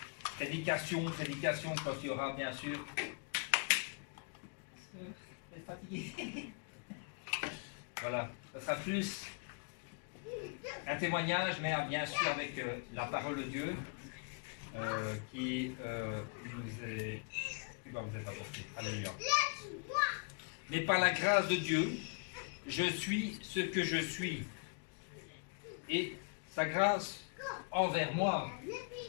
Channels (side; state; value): right; quieter; 35.8 dB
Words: prédication quand il y aura bien sûr. Vous êtes fatigué. Voilà, ça sera plus un témoignage, mais bien sûr avec la parole de Dieu qui va vous être apportée. Alléluia. Mais par la grâce de Dieu, je suis ce que je suis. Et sa grâce envers moi